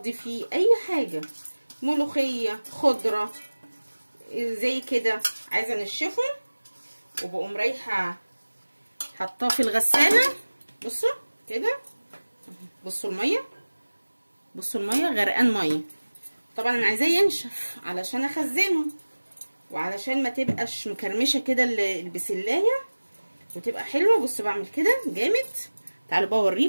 فيه اي حاجه، ملوخيه، خضره زي كده، عايزه انشفه، وبقوم رايحه حطاه في الغساله. بصوا كده، بصوا الميه، بصوا الميه غرقان ميه. طبعا انا عايزاه ينشف علشان اخزنه، وعلشان ما تبقاش مكرمشه كده البسلايه وتبقى حلوه. بصوا بعمل كده جامد. تعالوا بقى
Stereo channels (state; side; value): inverted; both; correlation -1.00